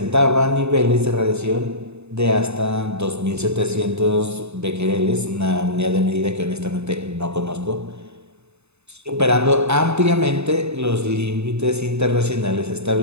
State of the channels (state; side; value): late; left; 0.80 ms